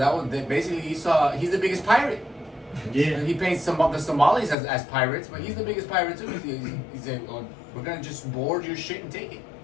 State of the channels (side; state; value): right; drops out; at 4.5 s